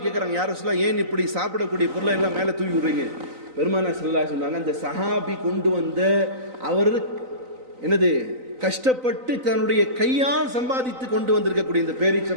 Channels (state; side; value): late; left; 3.9 ms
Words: கேட்குறாங்க, யார் ரசூலல்லாஹ் ஏன் இப்படி சாப்பிடக்கூடிய பொருளை எல்லாம் மேலே தூவி விடுறீங்க? பெருமானார் ஸல்லல்லாஹு அலைஹி சொன்னாங்க, இந்த சஹாபி கொண்டு வந்த அவர் என்னது கஷ்டப்பட்டு தன்னுடைய கையால் சம்பாதித்து கொண்டு வந்திருக்கக்கூடிய இந்த